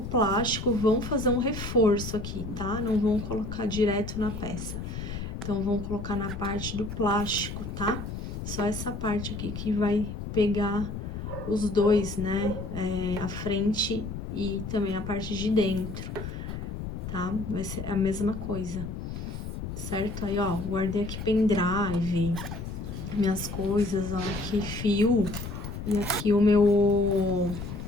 vão fazer um reforço aqui, tá? Não vão colocar direto na peça. Então, vão colocar na parte do plástico, tá? Só essa parte aqui que vai pegar os dois, né? A frente e também a parte de dentro, tá? Vai ser a mesma coisa, certo? Aí, ó, guardei aqui pendrive, minhas coisas, ó, aqui fio e aqui o meu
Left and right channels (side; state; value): left; noise; rumble, 7 dB below the sound